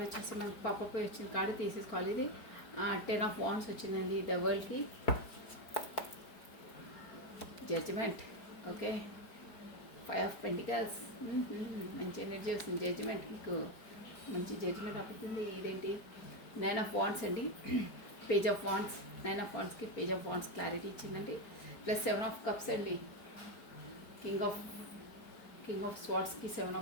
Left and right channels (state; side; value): late; right; 4.4 ms